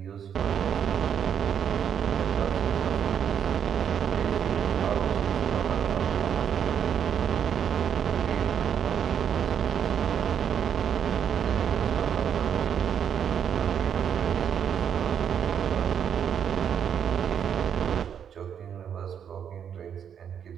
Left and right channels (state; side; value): quieter; left; 8.3 dB